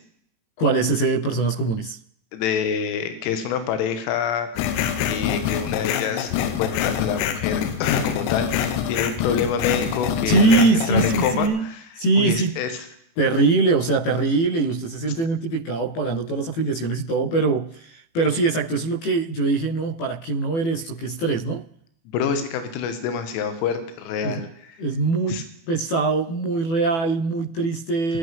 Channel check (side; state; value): right; late; 18 ms